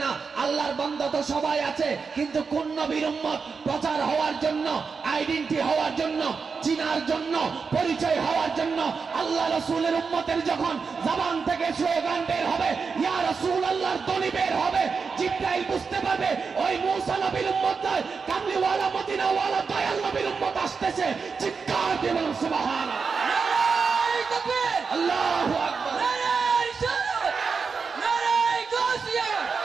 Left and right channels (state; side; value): quieter; left; 5.2 dB